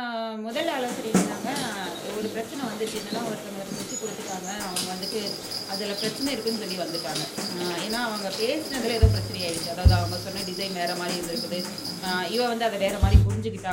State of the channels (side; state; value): both; identical; correlation 1.00